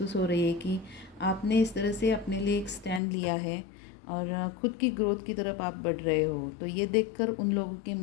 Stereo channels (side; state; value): right; drops out; at 3.0 s